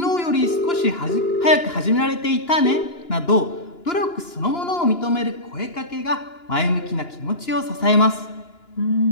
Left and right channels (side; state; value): right; late; 2.9 ms